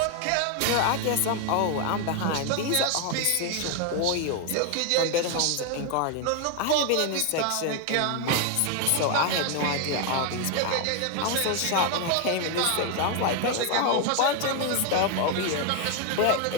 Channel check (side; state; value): both; different; correlation 0.01